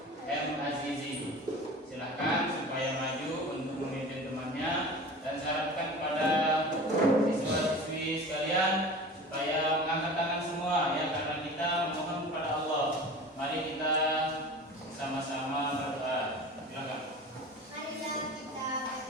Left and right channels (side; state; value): both; normal; correlation 0.36